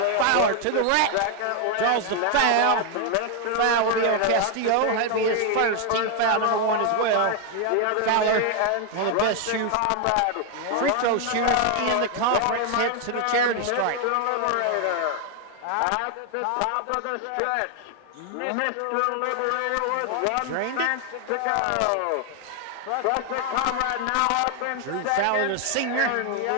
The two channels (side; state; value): both; different; correlation 0.01